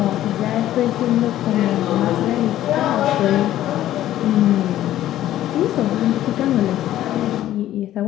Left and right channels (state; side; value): quieter; right; 13.2 dB